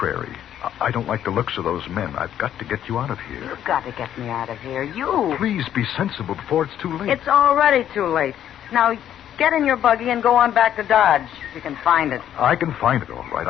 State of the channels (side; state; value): right; quieter; 10.6 dB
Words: I don't like the looks of those men. I've got to get you out of here. You've got to get me out of here. You. Please be sensible before it's too late. It's already too late. Now, get in your buggy and go on back to Dodge, if you can find it. I can find it, all right.